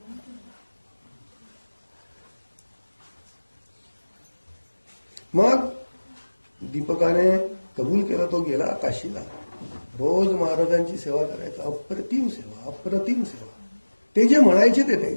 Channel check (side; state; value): both; inverted; correlation -1.00